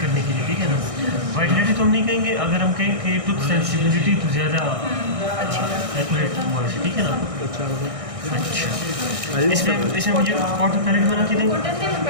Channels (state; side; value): late; left; 1.6 ms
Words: करने के लिए, ठीक है ना। वाइटलिटी तो हम नहीं कहेंगे, अगर हम कहें कि टूथ सेंसिटिविटी तो ज़्यादा एक्यूरेट हुआ है, ठीक है ना। अच्छा, इसमें मुझे कॉटन पैलेट बना के देंगे,